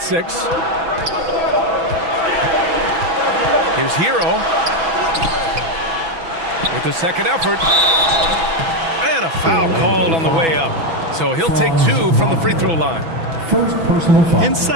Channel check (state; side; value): late; left; 6.1 ms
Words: 6. Here's Hero. With the second effort. And a foul called on the way up. So he'll take 2 from the free throw line. First personal foul.